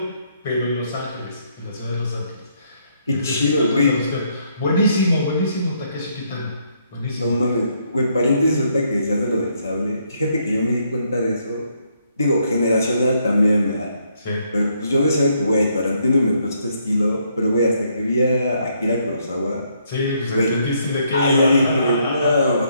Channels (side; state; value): both; inverted; correlation -0.72